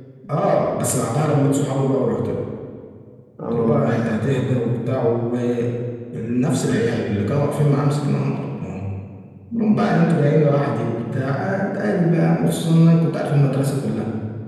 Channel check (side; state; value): both; identical; correlation 1.00